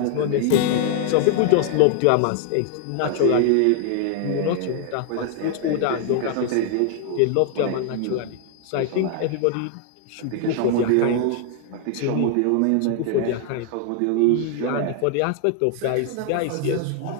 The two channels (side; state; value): both; different; correlation 0.00